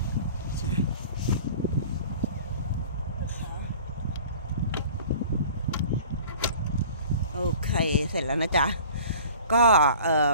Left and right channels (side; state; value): both; inverted; correlation -0.45